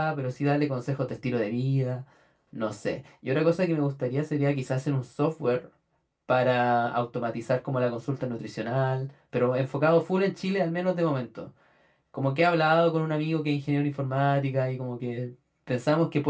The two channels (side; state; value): both; identical; correlation 1.00